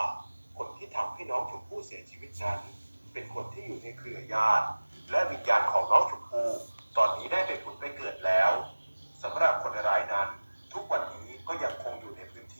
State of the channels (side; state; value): both; inverted; correlation -1.00